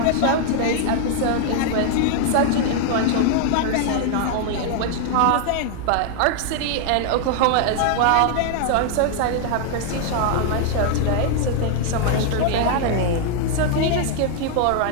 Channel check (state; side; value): different; both; correlation 0.00